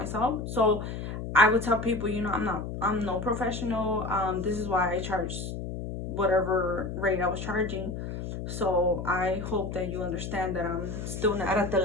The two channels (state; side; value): noise; left; hum, 6 dB below the sound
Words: So I would tell people, you know, I'm no professional. This is why I charged whatever rate I was charging. So I hope that you understand that I'm still not at the